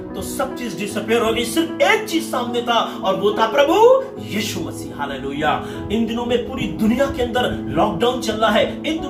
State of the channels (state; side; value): identical; both; correlation 1.00